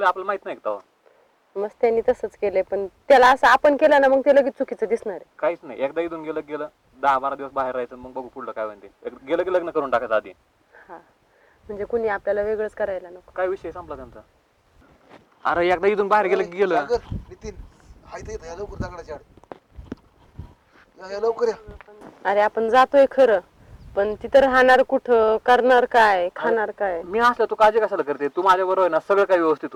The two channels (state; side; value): identical; both; correlation 1.00